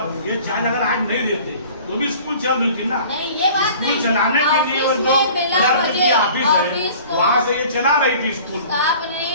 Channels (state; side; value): inverted; both; correlation -0.47